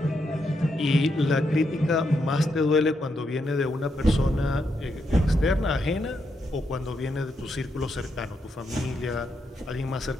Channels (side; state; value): both; normal; correlation 0.81